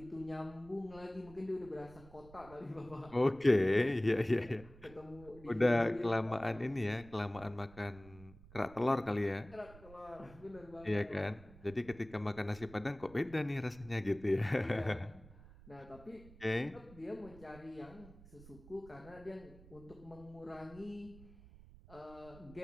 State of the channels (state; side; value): noise; right; rumble, 20 dB below the sound